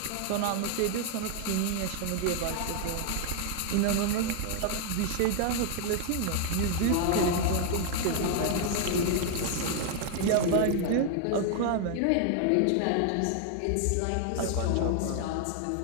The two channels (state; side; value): different; both; correlation 0.00